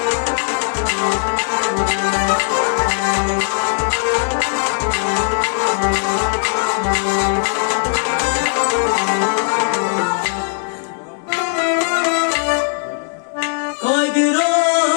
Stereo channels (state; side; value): silent; right; digital silence